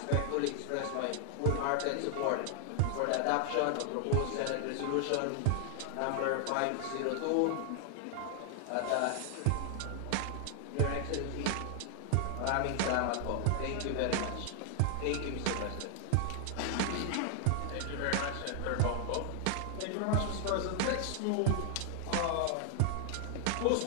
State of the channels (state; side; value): different; both; correlation 0.00